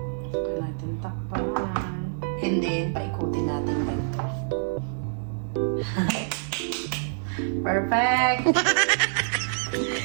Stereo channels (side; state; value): left; silent; digital silence